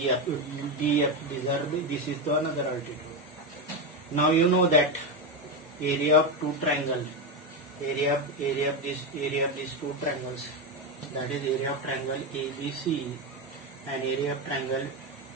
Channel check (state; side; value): normal; both; correlation 0.12